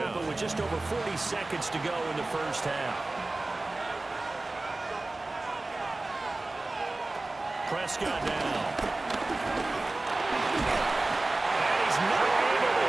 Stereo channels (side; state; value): left; quieter; 3.0 dB